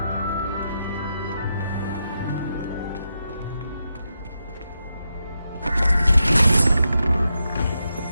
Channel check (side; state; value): both; inverted; correlation -0.85